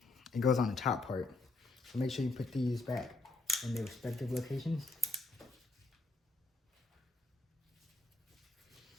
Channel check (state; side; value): quieter; right; 3.1 dB